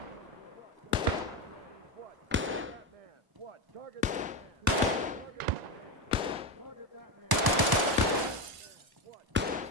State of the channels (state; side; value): late; left; 1.0 ms